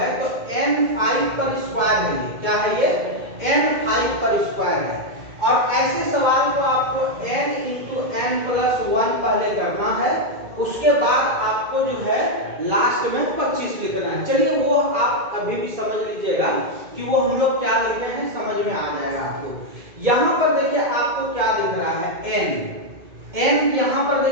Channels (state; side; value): late; left; 2.1 ms